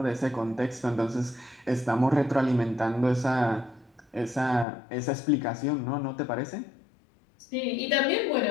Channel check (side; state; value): right; drops out; at 4.7 s